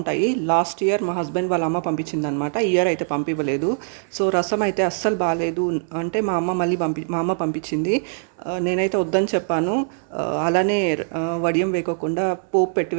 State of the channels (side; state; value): left; silent; digital silence